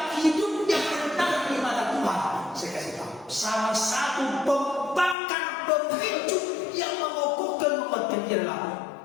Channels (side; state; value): right; drops out; at 5.2 s